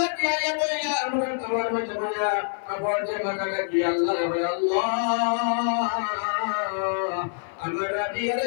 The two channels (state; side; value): silent; right; 56 dB below the other